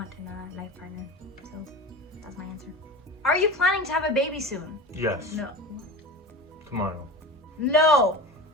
in a life partner. So that's my answer. Are you planning to have a baby soon? Yes. No. Tomorrow. No.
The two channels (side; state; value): both; normal; correlation 0.31